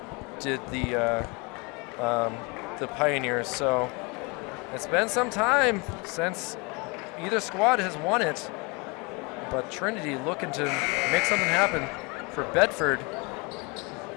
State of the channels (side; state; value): right; quieter; 29.0 dB